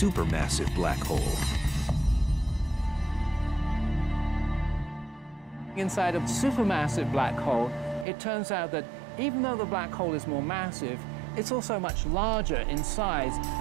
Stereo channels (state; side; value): drops out; left; at 8.1 s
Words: black hole. Inside a supermassive black hole, it turns out that even though the black hole is more massive, it's also much larger in size,